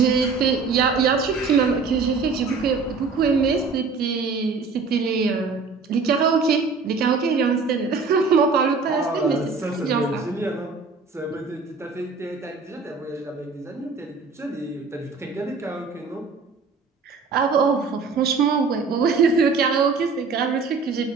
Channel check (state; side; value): quieter; left; 4.6 dB